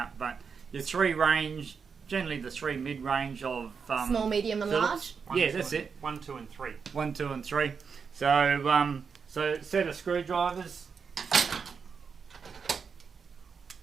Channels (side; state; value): left; quieter; 5.8 dB